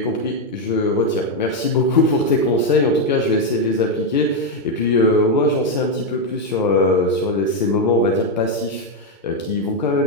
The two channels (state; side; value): normal; both; correlation 0.04